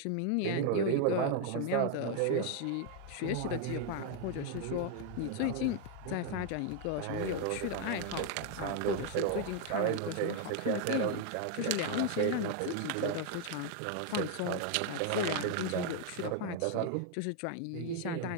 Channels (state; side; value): different; both; correlation 0.00